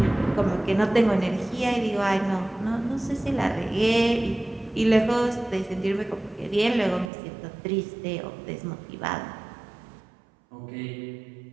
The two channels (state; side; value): drops out; left; at 7.1 s